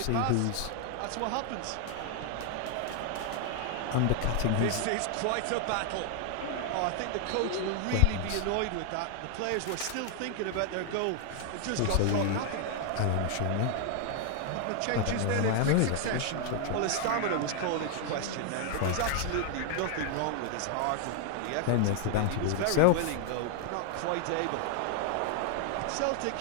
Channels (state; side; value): different; both; correlation 0.00